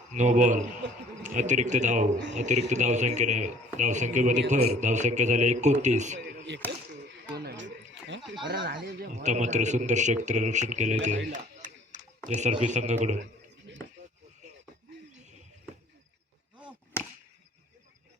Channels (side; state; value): both; normal; correlation 0.54